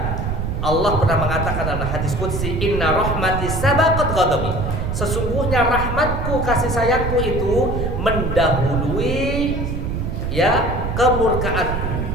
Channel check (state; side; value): noise; right; rumble, 2 dB below the sound